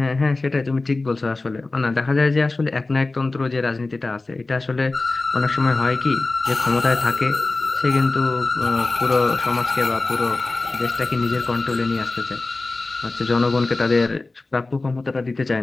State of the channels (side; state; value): right; quieter; 3.3 dB